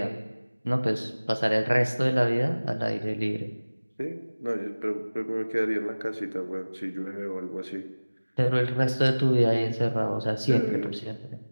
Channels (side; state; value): both; inverted; correlation -1.00